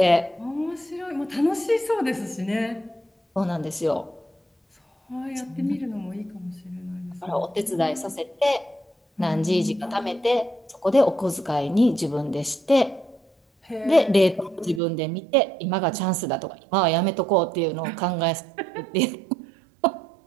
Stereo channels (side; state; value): left; drops out; at 14.8 s